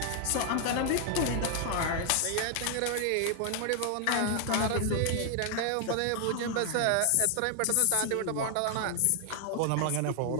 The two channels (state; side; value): different; both; correlation 0.00